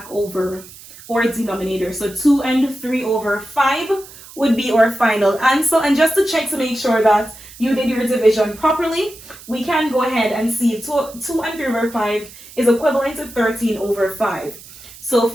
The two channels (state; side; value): noise; right; hiss, 19 dB below the sound